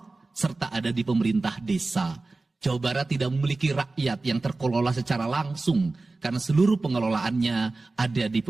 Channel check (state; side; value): quieter; left; 3.4 dB